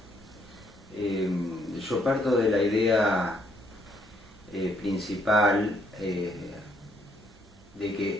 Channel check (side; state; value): both; normal; correlation 0.70